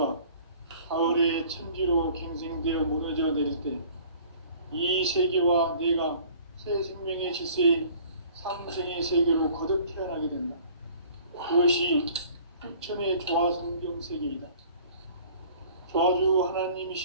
가을의 천지로 갱생되어 무너져 내릴 때 이 세계와 내가 새 생명의 질서의 상생의 세계로 거듭 태어나게 된다. 그것이 후천의 조화성경 세계이다. 조화주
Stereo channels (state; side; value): inverted; both; correlation -0.50